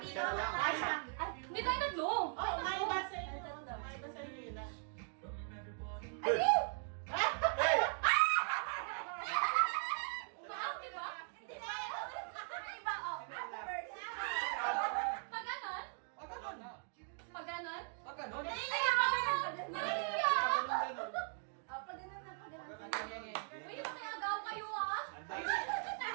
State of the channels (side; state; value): left; silent; 51 dB below the other